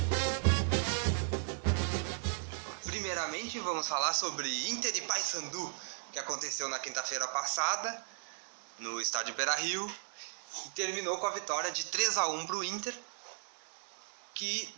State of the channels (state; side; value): silent; left; 54 dB below the other